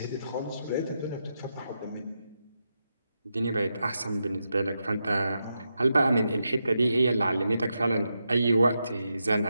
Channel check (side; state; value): both; inverted; correlation -0.86